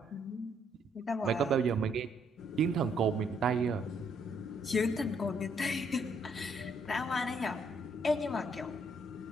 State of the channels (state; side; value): normal; both; correlation 0.70